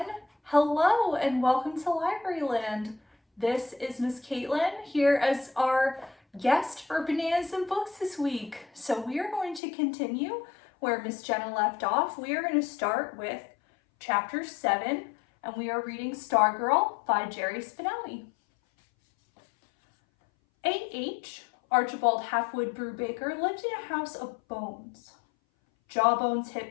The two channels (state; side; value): drops out; right; at 9.6 s